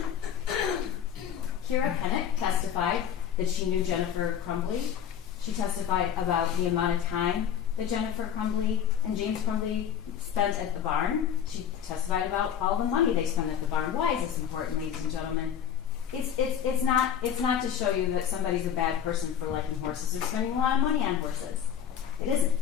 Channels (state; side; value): quieter; right; 8.9 dB